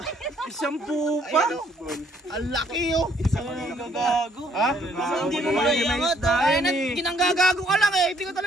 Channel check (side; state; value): both; normal; correlation 0.65